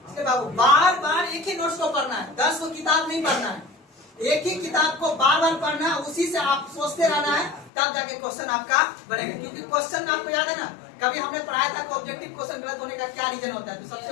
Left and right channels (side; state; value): right; drops out; at 7.7 s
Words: इसलिए बाबू बार बार एक ही नोट्स को पढ़ना है, 10 को किताब नहीं पढ़ना है। एक ही किताब को बार बार पढ़ना है, उसी से आप सोचते रहना है, तब जाके क्वेश्चन आपका बनेगा। क्योंकि क्वेश्चन आपको याद है ना, कभी हमने पढ़ाया था कि ऑब्जेक्टिव क्वेश्चन गलत होने का क्या रीजन होता है? तो सबसे